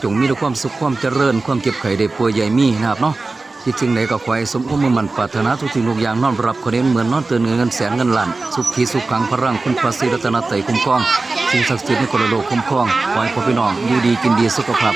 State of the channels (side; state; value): left; quieter; 3.5 dB